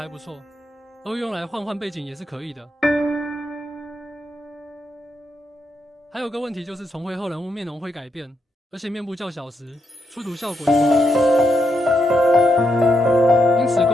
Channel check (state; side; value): normal; both; correlation 0.80